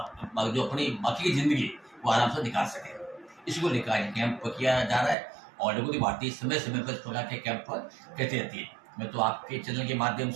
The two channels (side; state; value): left; drops out; at 5.2 s